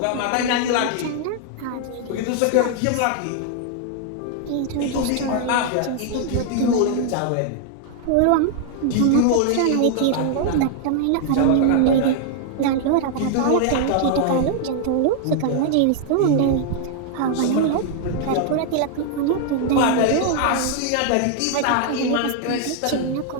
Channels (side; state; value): both; different; correlation 0.00